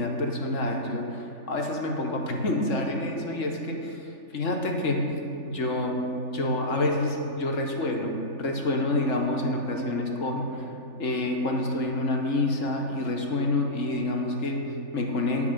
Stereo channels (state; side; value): late; right; 3.4 ms